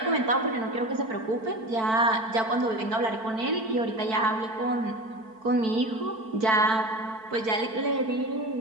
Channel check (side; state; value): left; late; 4.5 ms